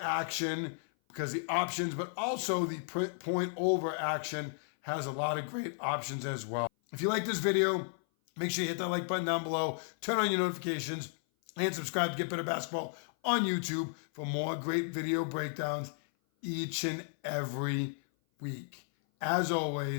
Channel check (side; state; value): right; silent; 55 dB below the other